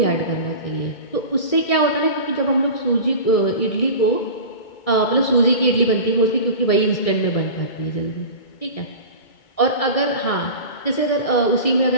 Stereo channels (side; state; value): right; late; 1.6 ms